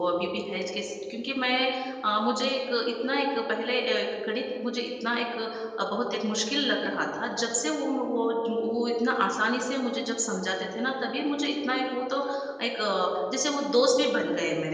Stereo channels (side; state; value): both; identical; correlation 1.00